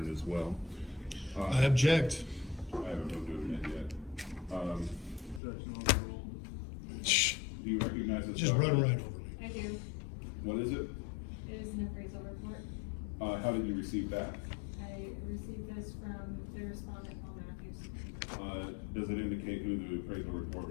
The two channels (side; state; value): right; drops out; at 5.4 s